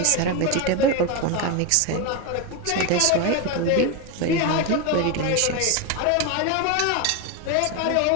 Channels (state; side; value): different; both; correlation 0.03